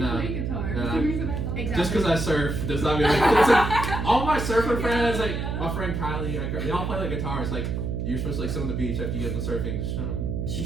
played guitar. No. That's the reason I thought. Exactly. Just because I surf does not mean it's like, all my surfer friends, like my friend Kylie, they all play like guitars. Like you're supposed to like sit on the beach after you get done surfing.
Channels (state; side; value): noise; right; hum, 2 dB below the sound